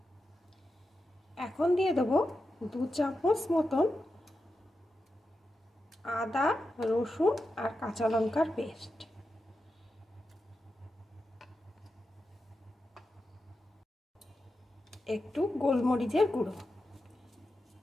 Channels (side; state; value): both; normal; correlation 0.89